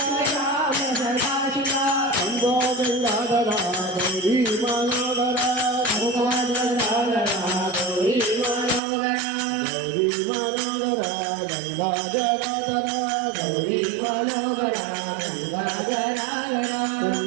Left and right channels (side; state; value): left; drops out; at 8.8 s